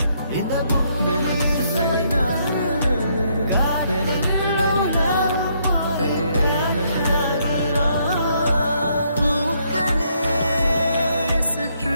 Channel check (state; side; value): inverted; both; correlation -0.72